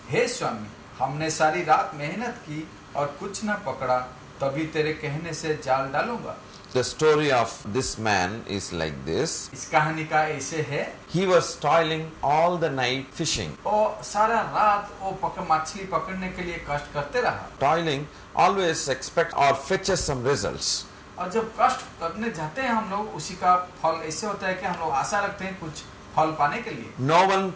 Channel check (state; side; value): identical; both; correlation 1.00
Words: हे स्वामी, हमने सारी रात मेहनत की और कुछ न पकड़ा, तभी तेरे कहने से जाल डालूंगा. The story of this man is like this. इस कहानी का ऐसे है. He was toiling all the night fishing. और सारा रात वो मछली पकड़ने के लिए कष्ट करते रहा. Toiling always expect or fetches some results. और जब कष्ट करने जाते हैं हम लोग, उसी का फल ऐसे होता है कि हम लोग आशा रखते हैं कुछ फल पाने के लिए. No one